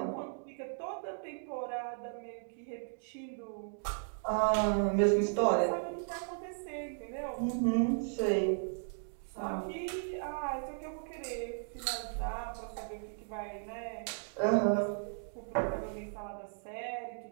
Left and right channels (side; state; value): left; silent; digital silence